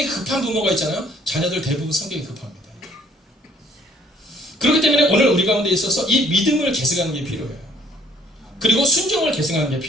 급한 부모가 있잖아요. 자녀들 대부분 성격이 급합니다. 그렇기 때문에 오늘 우리 가운데 있어서 이 믿음을 계승하는 게 필요해요. 그리고 순종을 계승하는 게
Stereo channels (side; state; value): both; normal; correlation 0.60